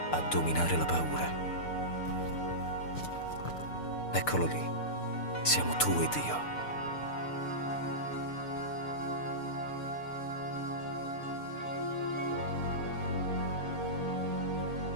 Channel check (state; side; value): late; right; 6.8 ms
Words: a dominare la paura. Eccolo lì, siamo tu ed io.